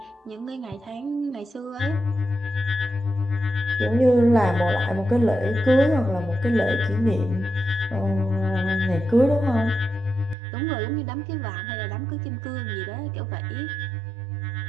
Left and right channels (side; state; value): left; drops out; at 10.4 s